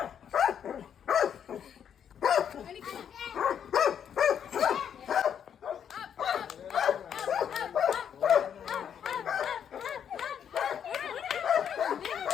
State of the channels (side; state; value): right; quieter; 8.5 dB